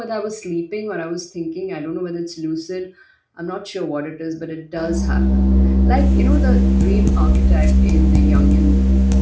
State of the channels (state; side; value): identical; both; correlation 1.00